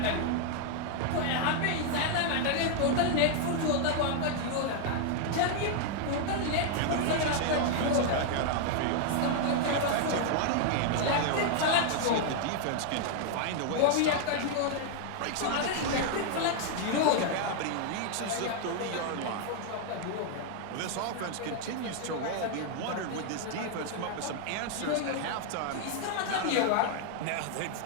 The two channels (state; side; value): different; both; correlation 0.00